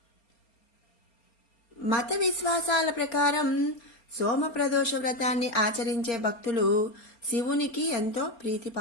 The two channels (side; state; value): right; late; 4.3 ms